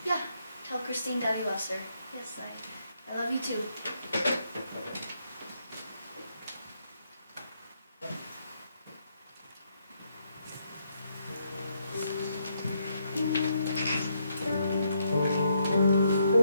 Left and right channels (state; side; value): inverted; both; correlation -0.76